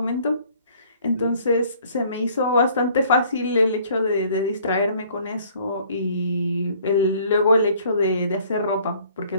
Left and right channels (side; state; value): both; inverted; correlation -0.57